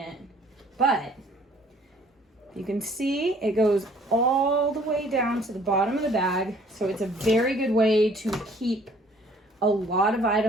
But you can see it goes all the way down to the bottom of the bag. So it's a very good way to keep a lot of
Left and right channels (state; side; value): normal; both; correlation 0.58